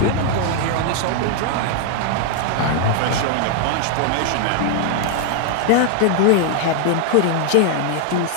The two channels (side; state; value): both; different; correlation 0.00